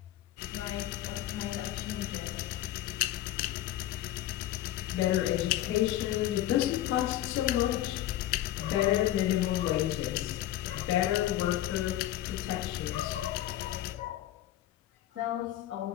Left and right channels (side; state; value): right; quieter; 13.9 dB